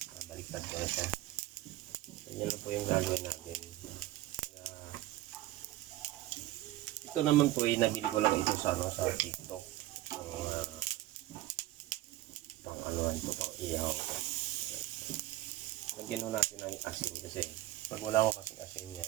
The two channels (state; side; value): quieter; left; 15.9 dB